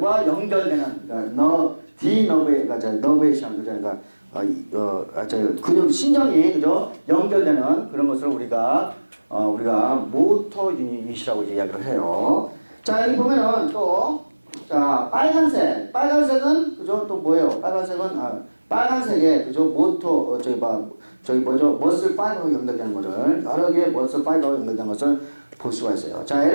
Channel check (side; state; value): both; inverted; correlation -1.00